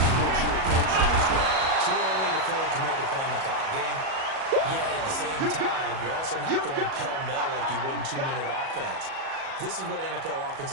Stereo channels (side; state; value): left; late; 37 ms